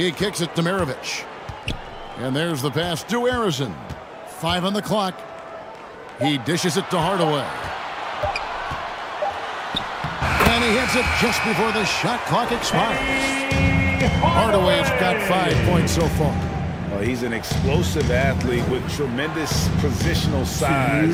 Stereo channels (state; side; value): identical; both; correlation 1.00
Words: kicks it to Maravich. And there's the pass to Harrison. 5 on the clock. He dishes it to Hardaway. And he hits it just before the shot clock expires. Hardaway's got 5 points so far. Well, he's an explosive athlete with tremendous positional